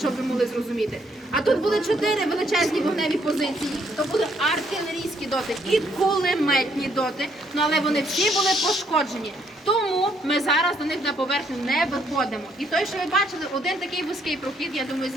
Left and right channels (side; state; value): both; normal; correlation 0.70